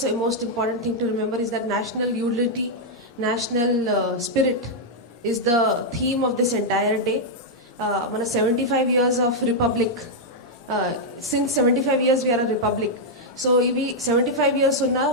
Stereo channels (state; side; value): normal; both; correlation -0.04